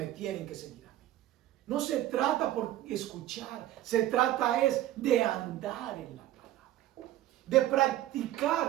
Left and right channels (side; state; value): left; quieter; 14.0 dB